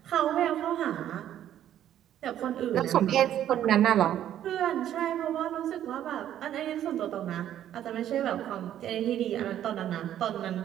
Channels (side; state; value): left; quieter; 11.2 dB